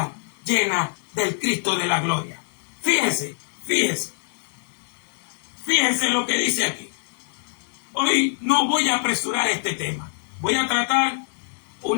llena del Cristo de la gloria. Fíjese lo que dice aquí. Hoy no voy a apresurar este tema. Voy a tratar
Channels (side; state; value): right; silent; digital silence